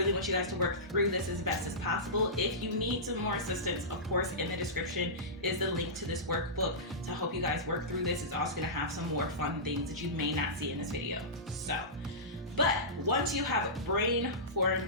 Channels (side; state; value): both; normal; correlation -0.18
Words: want you guys to work through this as best as possible. If you need some more assistance, of course, in the description is the link to this workbook to help you guys work through this. It's also gonna have some more fun things that you may not see in this video. So, but once you have